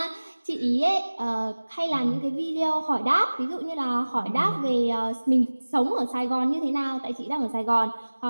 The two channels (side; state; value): both; inverted; correlation -1.00